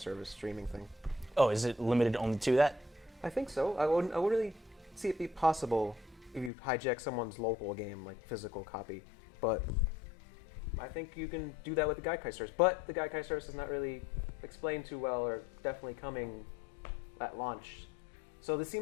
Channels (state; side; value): drops out; right; at 6.5 s